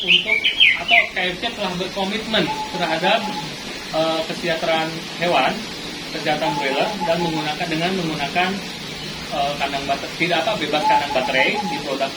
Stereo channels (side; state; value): both; identical; correlation 1.00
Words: untuk, atau KFC telah berkomitmen terhadap kesejahteraan hewan, kesehatan broiler, dan menggunakan kandang baterai, bebas kandang baterai di produk